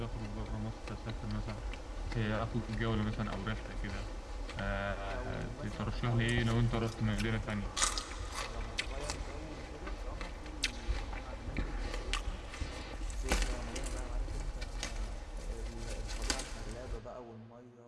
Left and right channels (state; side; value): identical; both; correlation 1.00